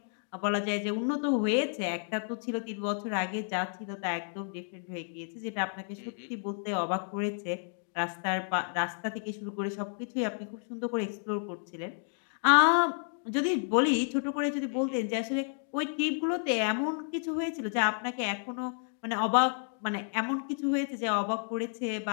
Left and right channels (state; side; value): silent; right; 57 dB below the other